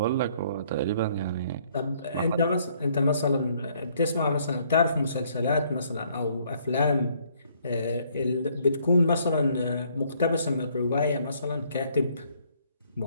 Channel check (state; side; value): inverted; both; correlation -0.65